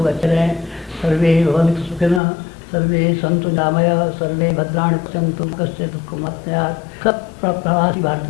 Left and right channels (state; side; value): drops out; right; at 2.2 s